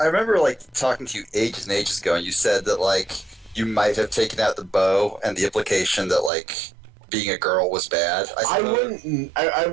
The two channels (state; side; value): drops out; left; at 6.3 s